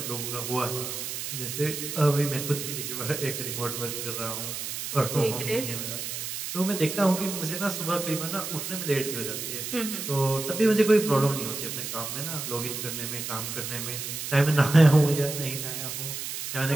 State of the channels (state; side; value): noise; right; hiss, 5 dB below the sound